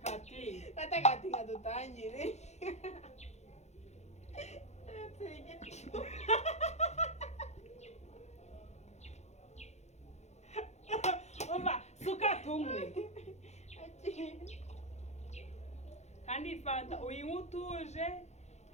batakatinga dutangire umva suka tumwe kandi fanta uyinywa utuje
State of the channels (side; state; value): right; late; 0.32 ms